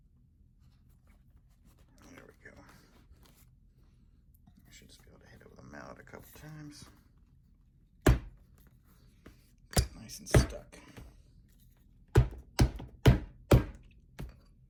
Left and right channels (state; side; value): identical; both; correlation 1.00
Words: There we go. I should just be able to hit it with a mallet a couple times. Nice and stuck.